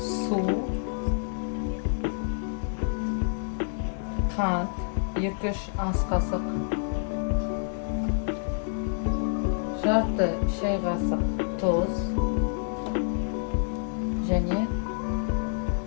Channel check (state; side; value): silent; right; digital silence